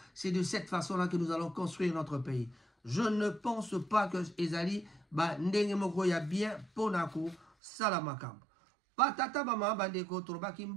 c'est de cette façon là que nous allons construire notre pays. Je ne pense pas que ezali ba ndenge moko ya bien pona ko sala makambo. Patata bama bandeko torobaki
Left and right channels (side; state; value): left; drops out; at 7.5 s